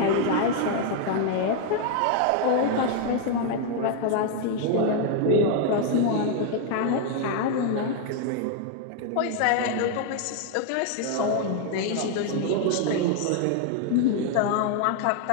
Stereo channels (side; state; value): both; different; correlation 0.00